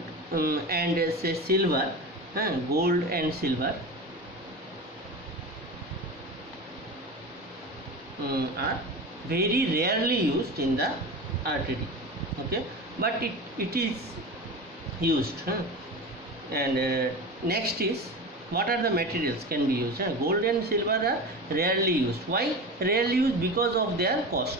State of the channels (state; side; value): normal; both; correlation 0.28